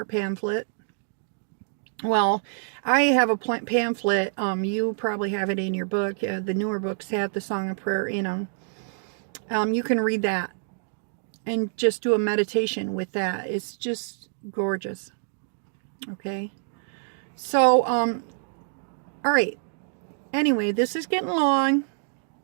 pamphlet. Well, I have a pamphlet. You probably have it in your book. The newer books have the Song of Prayer in them. You can read that and just do a meditation with that. It's just gorgeous. Okay. So, all right. Anyway, this is getting long.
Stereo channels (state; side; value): silent; left; digital silence